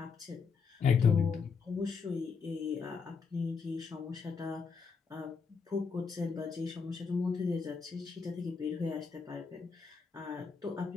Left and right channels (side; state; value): right; quieter; 5.4 dB